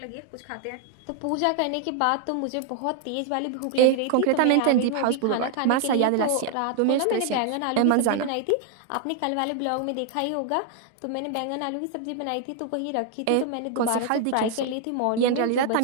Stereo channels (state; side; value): different; both; correlation 0.00